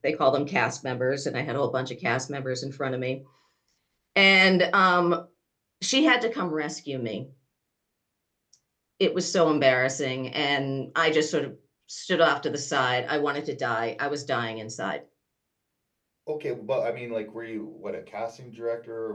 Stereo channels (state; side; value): identical; both; correlation 1.00